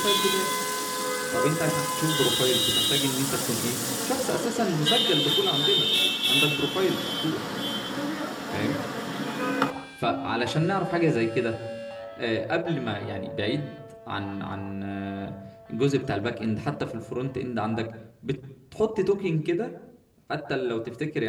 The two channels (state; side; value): identical; both; correlation 1.00